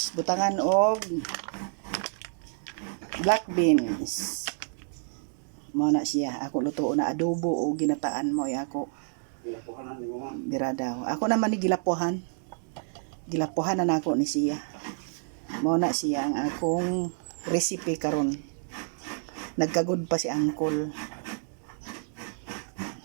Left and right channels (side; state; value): left; silent; digital silence